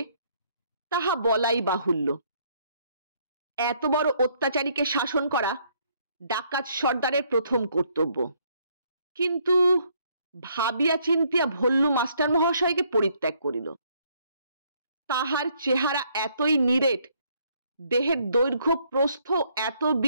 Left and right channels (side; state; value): both; inverted; correlation -0.68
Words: তাহা বলাই বাহুল্য। এত বড় অত্যাচারীকে শাসন করা ডাকাত সর্দারের প্রথম কর্তব্য। কিন্তু ভাবিয়া চিন্তিয়া ভল্লু মাস্টার মহাশয়কে পরিত্যাগ করিল। তাহার চেহারা এতই নিরেট, দেহের দৈর্ঘ্য প্রস্থ এত